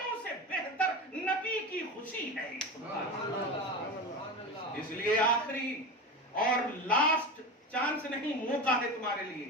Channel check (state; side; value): normal; both; correlation 0.25